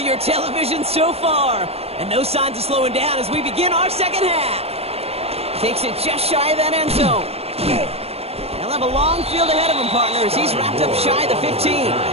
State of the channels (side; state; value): left; late; 0.29 ms